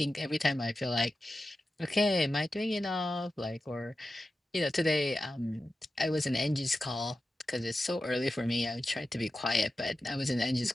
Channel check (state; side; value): normal; both; correlation 0.92